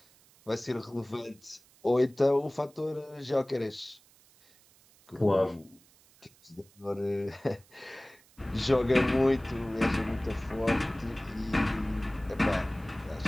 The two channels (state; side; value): noise; right; hiss, 29 dB below the sound